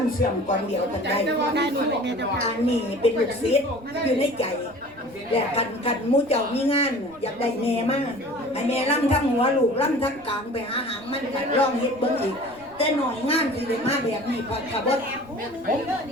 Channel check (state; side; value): noise; right; rumble, 25 dB below the sound